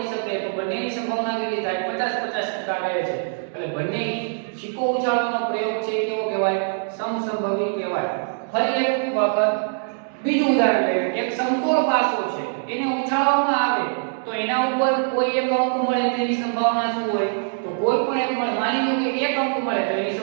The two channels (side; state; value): left; silent; digital silence